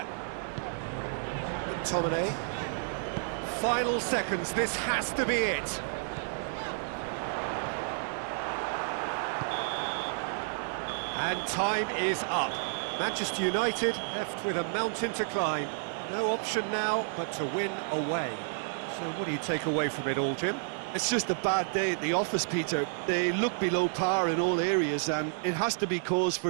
McTominay. Final seconds, this has to be it. And time is up. Manchester United left with a mountain to climb. No option now but to win away. So what do you take away from it all, Jim? It's just a bad day at the office, Peter. They look below par in all areas, and it has to be cause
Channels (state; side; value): silent; left; digital silence